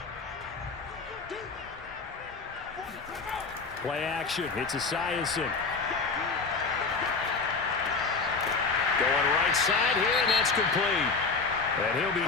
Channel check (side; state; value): right; quieter; 4.4 dB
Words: Play action. It's Esiason. Going right side here, and that's complete. And he'll